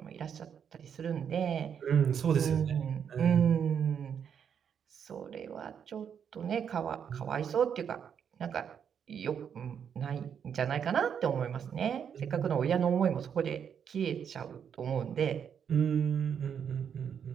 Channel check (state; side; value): quieter; left; 7.8 dB